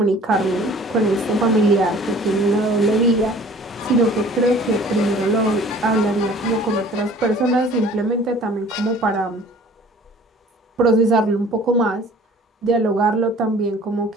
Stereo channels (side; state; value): both; normal; correlation 0.49